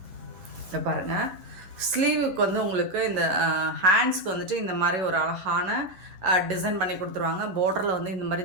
இதை பாருங்கள். ஸ்லீவுக்கு வந்து உங்களுக்கு இந்த ஹேண்ட்ஸ்க்கு வந்துட்டு இந்த மாதிரி ஒரு அழகான டிசைன் பண்ணி கொடுத்துருவாங்க. பார்டரில் வந்து இந்த மாதிரி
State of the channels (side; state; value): left; late; 11 ms